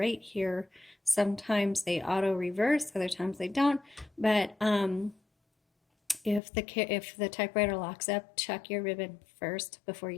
here. Sometimes they auto reverse, other times they don't. But if the typewriter locks up, check your ribbon first before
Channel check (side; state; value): right; drops out; at 6.4 s